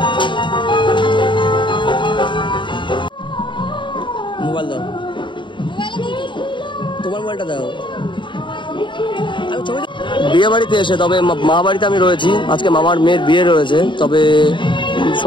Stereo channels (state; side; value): late; right; 0.23 ms